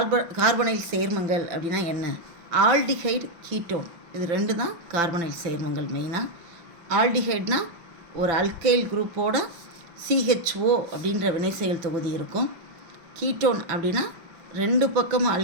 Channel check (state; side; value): late; left; 5.9 ms